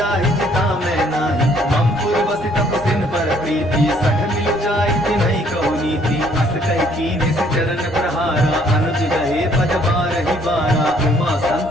गई सठ मिल जाई नहीं कहू नीति अस कही कीने से चरण प्रहारा अनुज गहे पद बारही बारा उमा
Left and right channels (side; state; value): both; normal; correlation 0.63